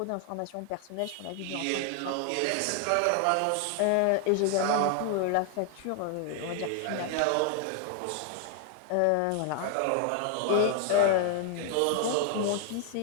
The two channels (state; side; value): different; both; correlation 0.00